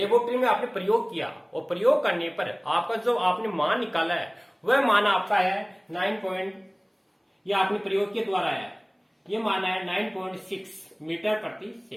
में आपने प्रयोग किया और प्रयोग करने पर आपका जो आपने मान निकाला है वह मान आपका है 9. ये आपने प्रयोग के द्वारा है, ये मान है 9.6 मीटर प्रति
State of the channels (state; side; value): identical; both; correlation 1.00